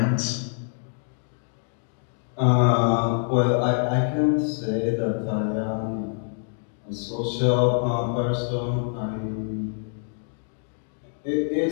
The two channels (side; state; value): right; silent; digital silence